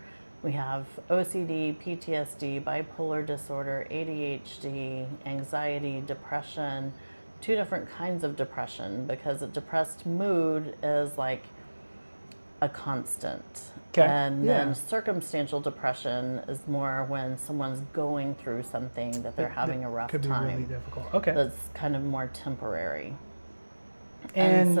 We have OCD, PTSD, bipolar disorder, ADHD, anxiety, depression, 2 different kinds of depression, because a depressed mood is like a constant. And then circumstantial depression is more when someone's going through something that they're having a rough time. Could be really difficult. That's kind of more temporary. And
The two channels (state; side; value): inverted; both; correlation -1.00